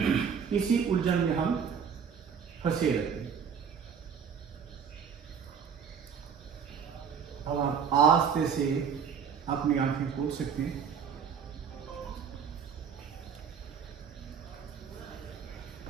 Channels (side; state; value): left; quieter; 7.0 dB